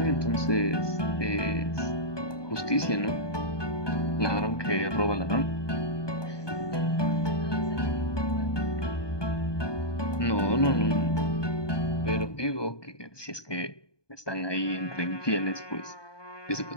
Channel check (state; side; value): late; right; 1.2 ms